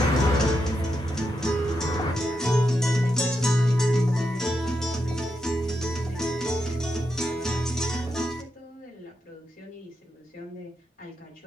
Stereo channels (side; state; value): both; normal; correlation 0.84